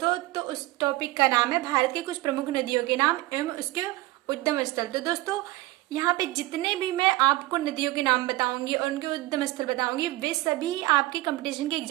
तो उस टॉपिक का नाम है भारत की कुछ प्रमुख नदियों के नाम एवं उसके उद्गम स्थल। तो दोस्तों यहाँ पे जितने भी मैं आपको नदियों के नाम बताऊंगी और उनके उद्गम स्थल बताऊंगी वे सभी आपके कंपटीशन के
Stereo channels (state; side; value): quieter; left; 18.7 dB